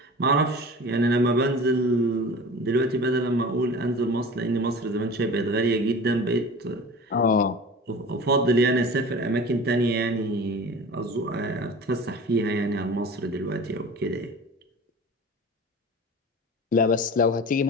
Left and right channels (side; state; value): both; normal; correlation 0.38